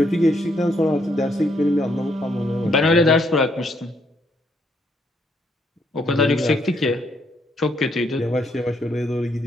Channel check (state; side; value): normal; both; correlation 0.73